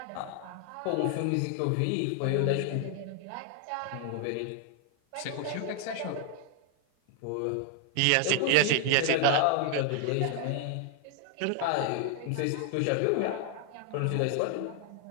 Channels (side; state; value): both; different; correlation 0.00